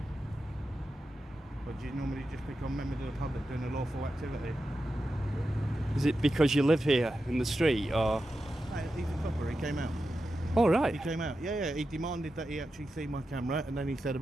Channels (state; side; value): normal; both; correlation 0.90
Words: Or do you normally just pick on members of the public doing a lawful activity? Is it because you live here in the street, or? No, he's a copper, he came out. Oh, right. He came out, yeah, he demanded that he actually see my camera, and then he said